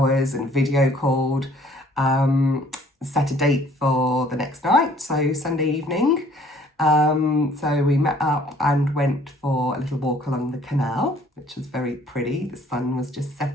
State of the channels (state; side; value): normal; both; correlation 0.57